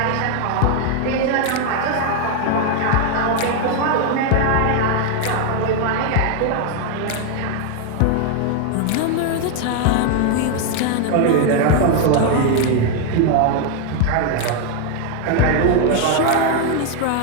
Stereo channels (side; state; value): both; different; correlation 0.01